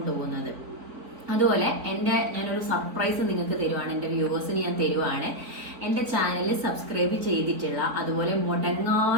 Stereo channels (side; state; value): left; late; 4.0 ms